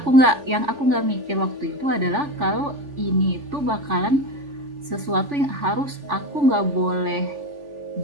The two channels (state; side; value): late; left; 3.4 ms